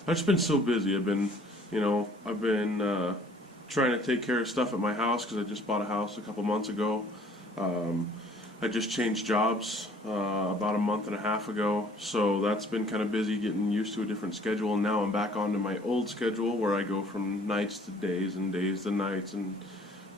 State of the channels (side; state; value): both; normal; correlation 0.56